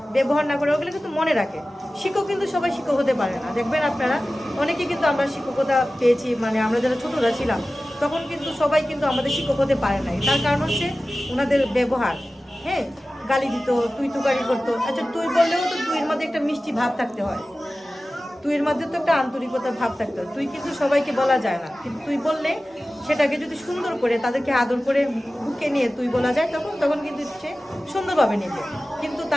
ব্যবহার না করে, ওগুলো কিন্তু মনে রাখে। শিক্ষক কিন্তু সবাই শিক্ষক হতে পারে না, দেখবেন আপনারা অনেকে কিন্তু আমরা শিক্ষকতা পেয়েছি, মানে আমরা যারা ছোটরা ছিলাম তখন কিন্তু সবাই কিন্তু আমাদের শিক্ষক হতে পারে নাই। তার কারণ হচ্ছে ওনাদের ব্যবহার। হ্যাঁ, গালি দিত, তুই তুকারি করতো। আচ্ছা, তুই বললেও তো তুইয়ের মধ্যে একটা মিষ্টি ভাব থাকতে হয়, তুইয়ের মধ্যে তো একটা আন্তরিকতার ভাব থাকতে হয়। তুই কিন্তু সবাইকে বলা যায় না, কিন্তু তুই বললে সেটাকে যদি সুন্দর করে তাদেরকে আদর করে বুকে নিয়ে তুই বলা যায়, তখন কিন্তু সে সুন্দরভাবে নেবে। কিন্তু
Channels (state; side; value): normal; both; correlation 0.96